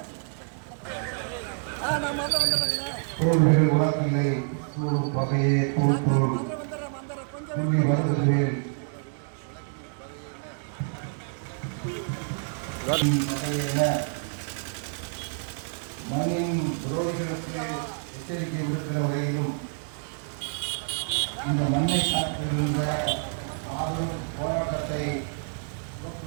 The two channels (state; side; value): silent; left; 59 dB below the other